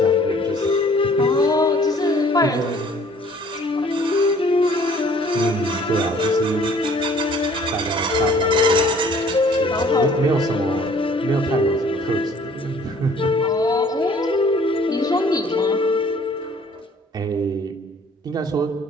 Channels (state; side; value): normal; both; correlation 0.56